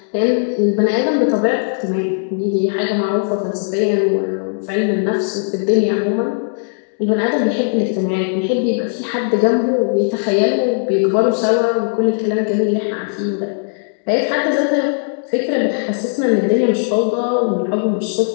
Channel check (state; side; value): silent; right; digital silence